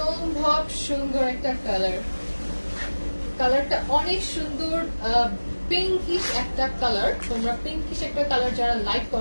সুন্দর একটা কালার। কালারটা অনেক সুন্দর, পিঙ্কিশ একটা কালার। তোমরা পিঙ্কিশ একটা কালার যারা লাইক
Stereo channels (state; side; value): inverted; both; correlation -1.00